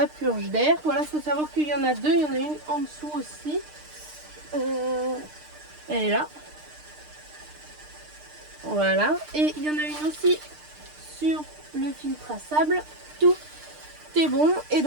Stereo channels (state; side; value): late; left; 6.6 ms